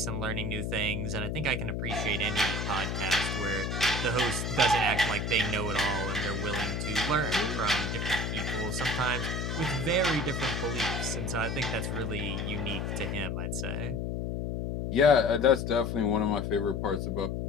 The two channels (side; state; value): left; noise; hum, 2 dB below the sound